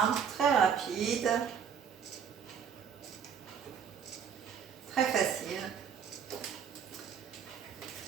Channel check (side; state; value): left; quieter; 7.5 dB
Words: très rapide, très facile.